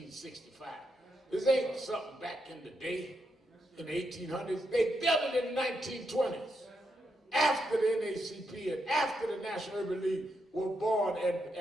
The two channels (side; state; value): both; normal; correlation 0.82